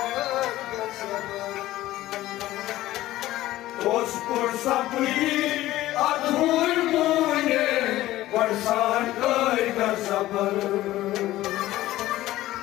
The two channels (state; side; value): quieter; right; 15.7 dB